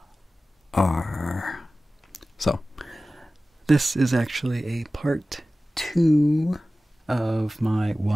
So, this is actually a part 2 of my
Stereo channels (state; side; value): normal; both; correlation 0.96